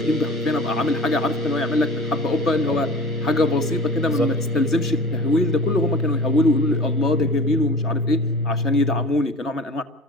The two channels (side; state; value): both; normal; correlation 0.39